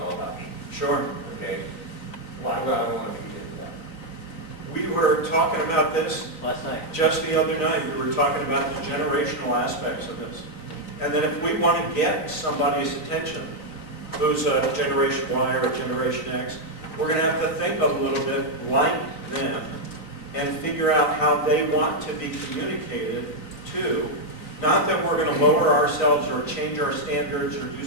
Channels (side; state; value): right; late; 3.9 ms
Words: about me. Sure. Okay? Why would I want to feed into that? We were talking about this Last night. just the other night. We were talking about the generational aspects of this. And that if we want to get somebody's attention, who's a Generation Y or a Generation X, we're going to have to think a little bit like them and figure out how they want to be communicated to. Not that we're going to lower ourselves or change our standards or do